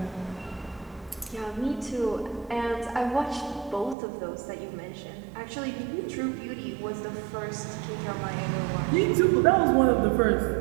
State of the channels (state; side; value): drops out; left; at 4.0 s